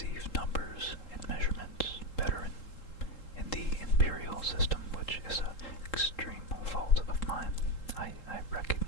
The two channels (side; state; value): right; late; 3.8 ms